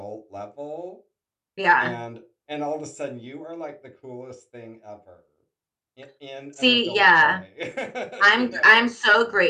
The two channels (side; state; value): both; identical; correlation 1.00